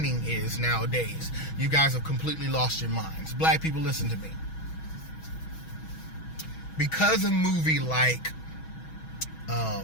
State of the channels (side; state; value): right; late; 6.2 ms